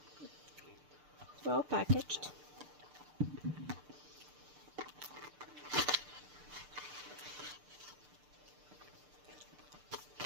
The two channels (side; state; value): left; late; 6.7 ms